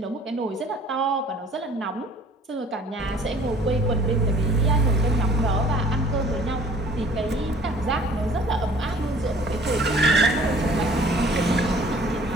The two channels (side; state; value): both; normal; correlation 0.52